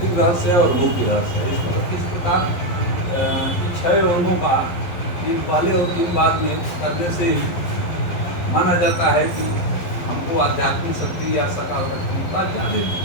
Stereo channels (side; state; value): right; late; 11 ms